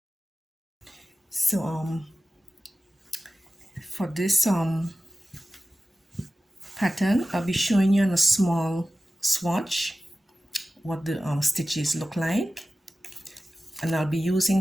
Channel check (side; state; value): both; normal; correlation 0.95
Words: So for this pattern, I'll be showing you on a small swatch what the stitches look like, and I'll be